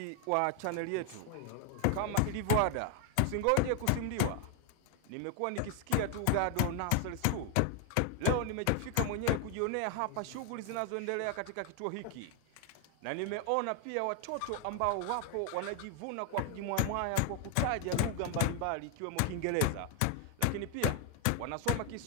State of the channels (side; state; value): both; different; correlation 0.00